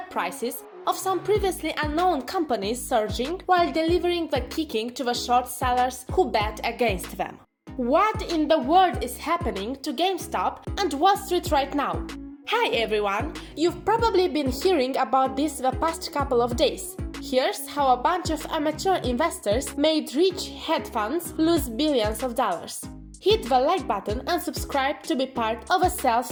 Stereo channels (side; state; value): both; identical; correlation 1.00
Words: prices of some previously unknown companies surging while delivering the kicking to the short sellers who bet against them. What in the world is happening to GameStop and Wall Street right now? Hi everyone! You've probably been hearing about this the past couple of days. Here's how a bunch of amateur investors made rich hedge funds lose billions of dollars. Hit the like button and subscribe to be part of a